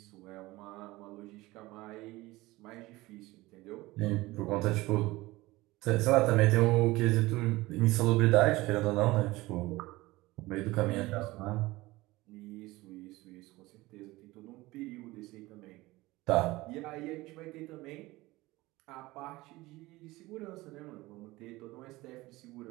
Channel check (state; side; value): quieter; left; 19.8 dB